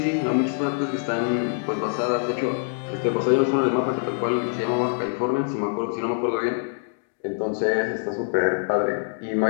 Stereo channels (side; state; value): right; silent; digital silence